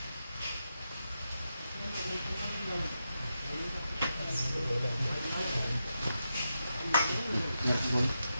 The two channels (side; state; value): both; inverted; correlation -0.87